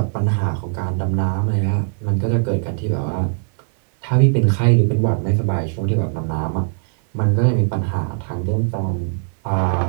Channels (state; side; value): silent; left; 62 dB below the other